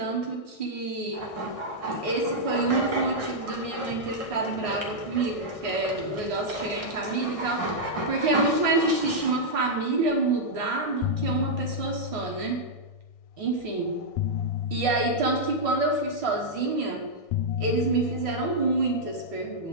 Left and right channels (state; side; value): late; right; 1.6 ms